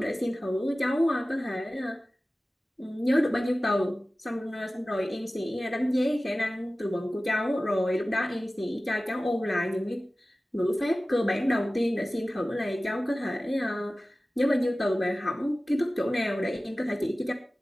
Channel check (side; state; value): both; normal; correlation 0.96